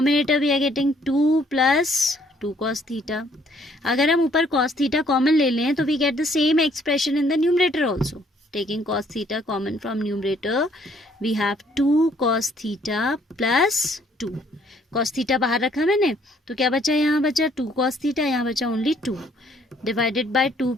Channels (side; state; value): both; normal; correlation 0.64